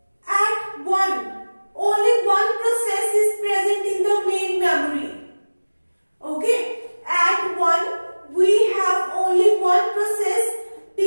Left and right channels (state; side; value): inverted; both; correlation -1.00